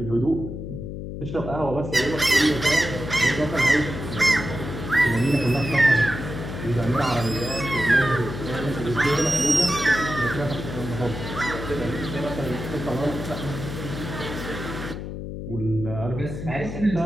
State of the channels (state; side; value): noise; left; hum, 7 dB below the sound